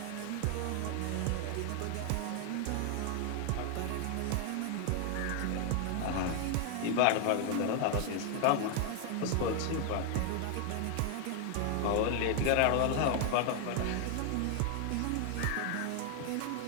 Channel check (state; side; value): different; both; correlation 0.00